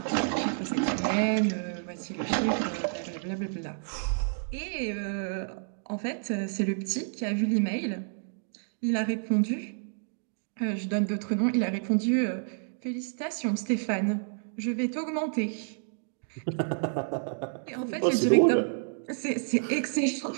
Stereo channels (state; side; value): silent; left; digital silence